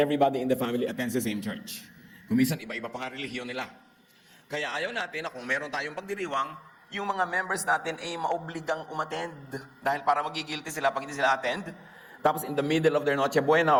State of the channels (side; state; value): both; identical; correlation 1.00